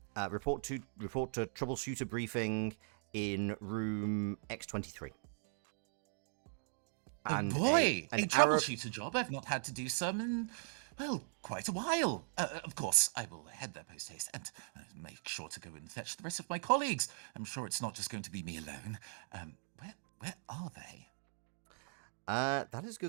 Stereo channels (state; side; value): silent; left; digital silence